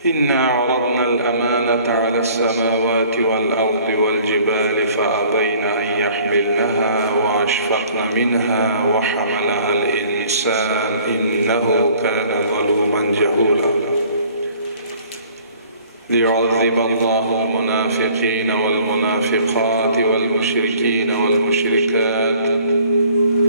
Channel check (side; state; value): both; inverted; correlation -0.54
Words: إنا عرضنا الأمانة على السماوات والأرض والجبال فأبين أن يحملنها وأشفقن منها وحملها الإنسان إنه كان ظلوما جهولا. ليعذب الله المنافقين والمنافقات والمشركين والمشركات